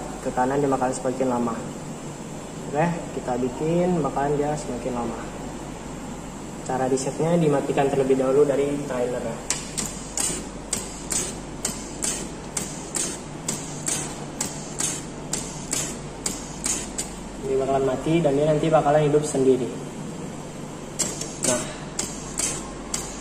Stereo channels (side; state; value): both; identical; correlation 1.00